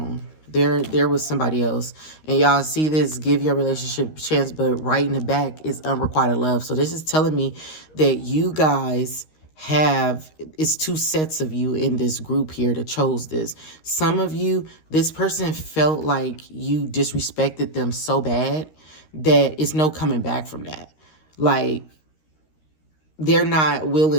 There was somebody else. And y'all see this, give your relationship a chance, but right in the back is unrequited love. So this is telling me that you guys it's two sets of you in this group here that chose this. Some of you, this person felt like you disrespected them so bad that it's no coming back from that. Like, they're not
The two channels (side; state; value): right; late; 13 ms